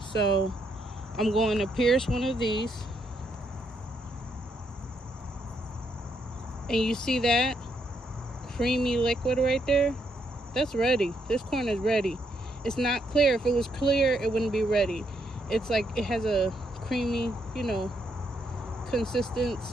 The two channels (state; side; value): normal; both; correlation 0.76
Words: So I'm going to pierce one of these. And you see that creamy liquid right there? That's ready. This corn is ready. It's not clear. If it was clear, it wouldn't be ready. It's like it has a creamy,